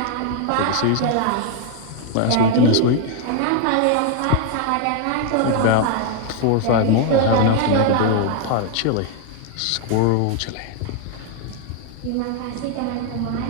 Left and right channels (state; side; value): different; both; correlation 0.00